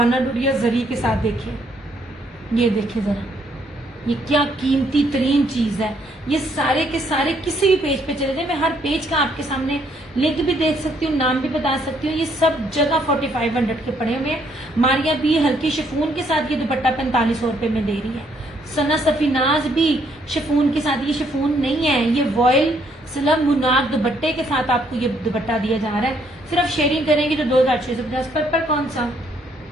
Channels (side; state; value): both; normal; correlation 0.69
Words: डुरिया जरी के साथ देखिए, ये देखिए जरा, ये क्या कीमती तरीन चीज है। ये सारे के सारे किसी भी पेज पे चले जाए, मैं हर पेज का आपके सामने लिंक भी देख सकती हूँ, नाम भी बता सकती हूँ। ये सब जगह 4500 के पड़े हुए हैं। मारिया भी हल्की शिफून के साथ ये दुपट्टा 4500 रुपए में दे रही है। सना सफीनाज भी शिफून के साथ, ये शिफून नहीं है, ये वॉयल स्लब मुनाक दुपट्टे के साथ आपको ये दुपट्टा दिया जा रहा है। सिर्फ शेयरिंग करेंगे तो 2650 पर कौन सा